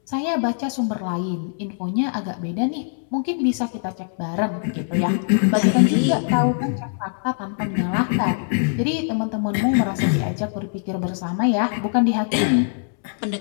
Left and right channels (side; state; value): right; silent; 64 dB below the other